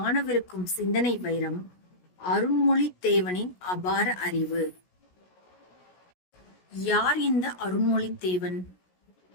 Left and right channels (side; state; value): right; late; 16 ms